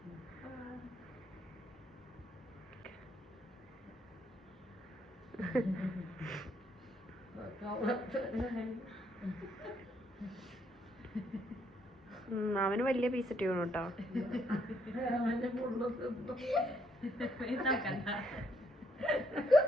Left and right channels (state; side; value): normal; both; correlation 0.72